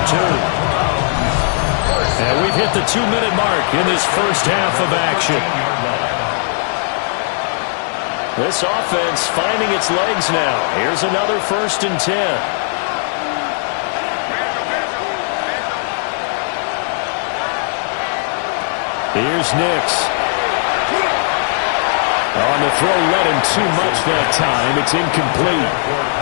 two. And we've hit the 2-minute mark in this first half of action. This offense finding its legs now. Here's another 1st and 10. Here's Nix. On the throw, led him too much that time. It's incomplete.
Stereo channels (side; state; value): right; silent; 68 dB below the other